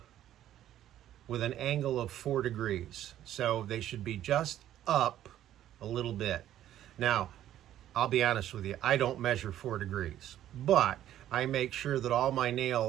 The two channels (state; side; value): quieter; left; 12.1 dB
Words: with an angle of 4 degrees. So they should be just up a little bit. Now, I'll be honest with you, I don't measure 4 degrees, but I make sure that all my